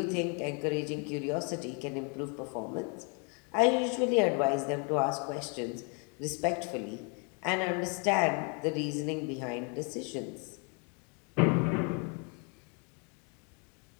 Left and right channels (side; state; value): right; quieter; 36.4 dB